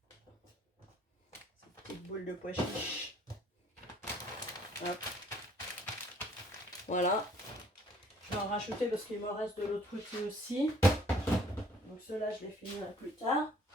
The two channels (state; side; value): normal; both; correlation 0.59